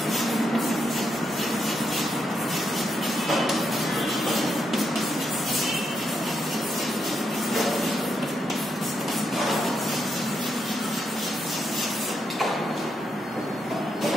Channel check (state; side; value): normal; both; correlation 0.81